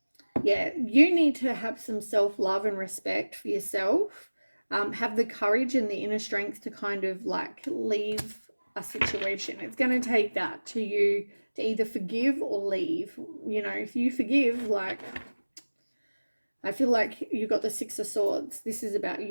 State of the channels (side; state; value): both; inverted; correlation -1.00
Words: Yeah, you need to have some self-love and respect for yourself. Have the courage and the inner strength to kind of like leave a situation. It's going to take that to you to either forgive or leave. You know, if you forgive, like, I feel like you got the Six of Swords. This is about